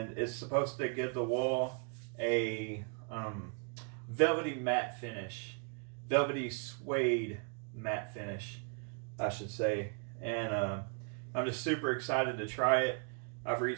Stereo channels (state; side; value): quieter; left; 39.1 dB